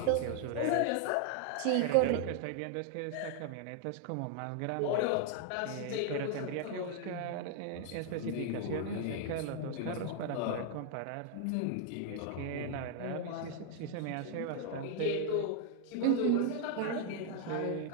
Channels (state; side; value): different; both; correlation 0.00